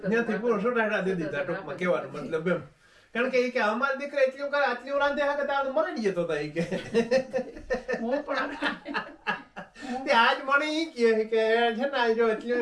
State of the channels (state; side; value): identical; both; correlation 1.00